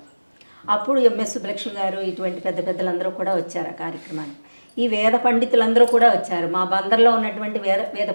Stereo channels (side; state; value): both; inverted; correlation -1.00